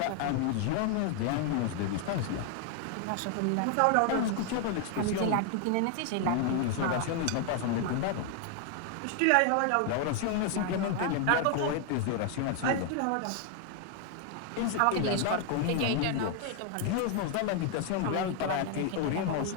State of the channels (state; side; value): different; both; correlation 0.00